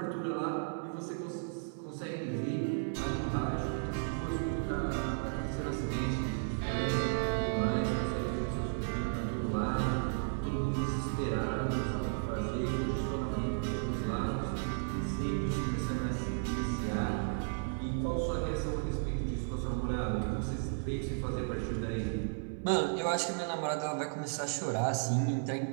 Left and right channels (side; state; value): left; silent; 55 dB below the other